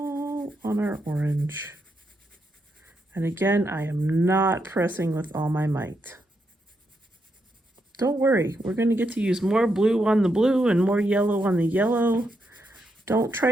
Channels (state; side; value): normal; both; correlation 0.81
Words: on our orange. And again, I am not pressing with all my might. Don't worry, we're going to get to use more blue on the blue and more yellow on the yellow. Don't try